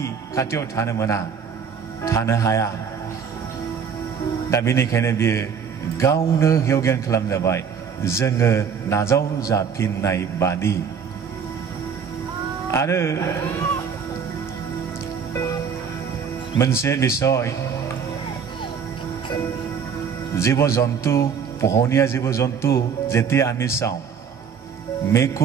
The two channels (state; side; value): quieter; left; 6.8 dB